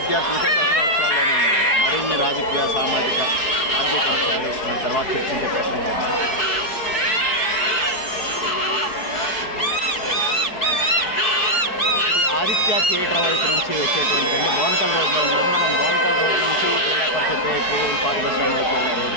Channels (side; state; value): right; late; 4.7 ms